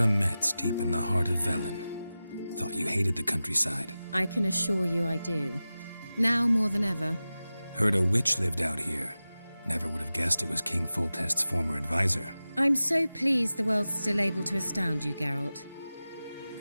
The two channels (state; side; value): inverted; both; correlation -0.95